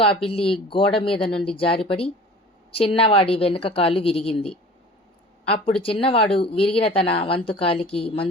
పిల్లి గోడ మీద నుండి జారిపడి చిన్నవాడి వెనుక కాలు విరిగింది. అప్పుడు చిన్నవాడు విరిగిన తన వంతు కాలికి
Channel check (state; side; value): normal; both; correlation 0.42